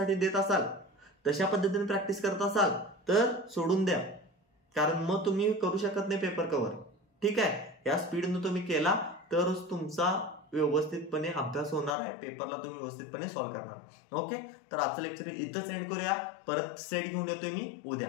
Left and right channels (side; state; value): right; drops out; at 12.0 s